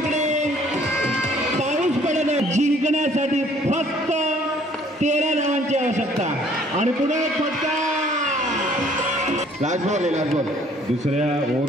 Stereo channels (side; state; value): both; normal; correlation 0.59